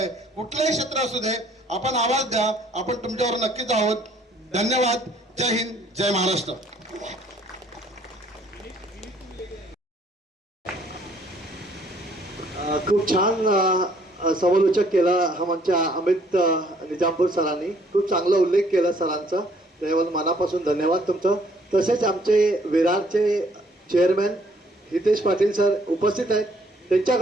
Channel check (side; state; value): both; normal; correlation 0.62